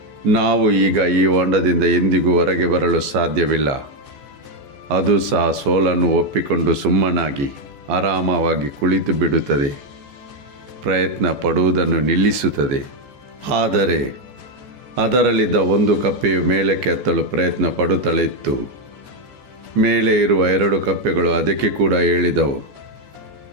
ನಾವು ಈಗ ಈ ಹೊಂಡದಿಂದ ಎಂದಿಗೂ ಹೊರಗೆ ಬರಲು ಸಾಧ್ಯವಿಲ್ಲ. ಅದು ಸಹ ಸೋಲನ್ನು ಒಪ್ಪಿಕೊಂಡು ಸುಮ್ಮನಾಗಿ ಆರಾಮವಾಗಿ ಕುಳಿತು ಬಿಡುತ್ತದೆ, ಪ್ರಯತ್ನ ಪಡುವುದನ್ನು ನಿಲ್ಲಿಸುತ್ತದೆ. ಆದರೆ ಅದರಲ್ಲಿದ್ದ 1 ಕಪ್ಪೆಯು ಮೇಲಕ್ಕೆ ಹತ್ತಲು ಪ್ರಯತ್ನ ಪಡುತ್ತಲೇ ಇತ್ತು. ಮೇಲೆ ಇರುವ 2 ಕಪ್ಪೆಗಳು ಅದಕ್ಕೆ ಕೂಡ ಹೇಳಿದವು,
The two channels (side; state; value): left; late; 15 ms